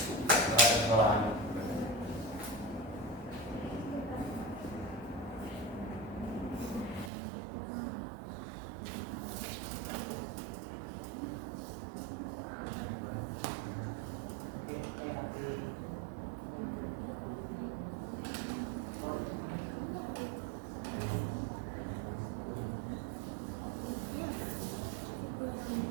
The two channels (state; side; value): drops out; left; at 7.1 s